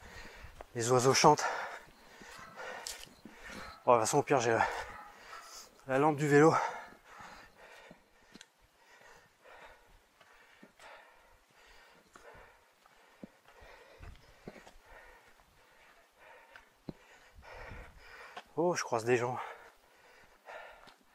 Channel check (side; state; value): both; identical; correlation 1.00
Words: les oiseaux chantent. Bon, de toute façon, au pire, j'ai la lampe du vélo. Oh, je croise des gens.